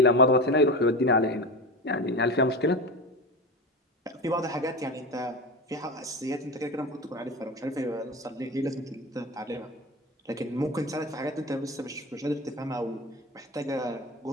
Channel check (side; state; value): both; normal; correlation 0.25